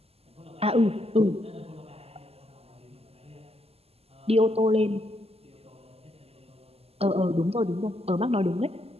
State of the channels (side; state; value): left; late; 0.29 ms